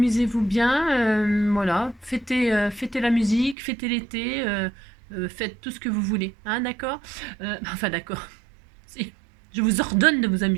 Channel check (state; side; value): drops out; left; at 3.6 s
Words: voilà. Fêtez la musique, fêtez l'été, faites tout ce que vous voulez. Hein, d'accord. Enfin, d'accord. Si. Je vous ordonne de vous